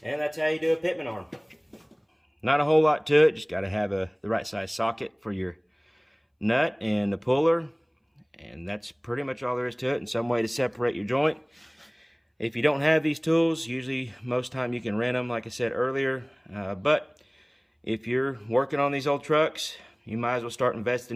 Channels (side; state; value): both; identical; correlation 1.00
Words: And that's how you do a Pitman arm. Not a whole lot to it, just got to have the right size socket for your nut and the puller. And that's pretty much all there is to it, and some way to separate your joint. If you don't have these tools, usually most time you can rent them, like I said earlier. But if you're working on these old trucks, you might as well start investing